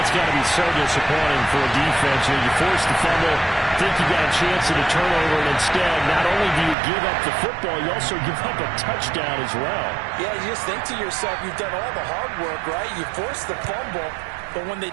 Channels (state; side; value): drops out; left; at 6.8 s